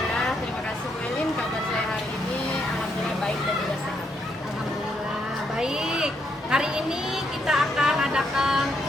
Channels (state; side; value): normal; both; correlation 0.76